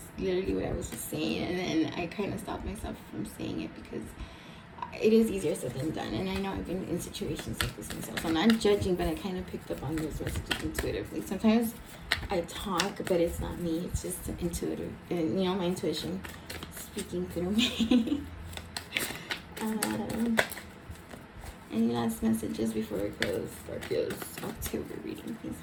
literally what I was just saying, and then I kind of stopped myself from saying it because it is easier said than done. And I know I've been in situations like this myself. I'm not judging, but I kind of picked up on those messages intuitively. Sometimes I talk, but it's not me. It's just intuitive, and my intuition speaking through me. Any last messages before we close Scorpio's October reading, please,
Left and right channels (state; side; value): identical; both; correlation 1.00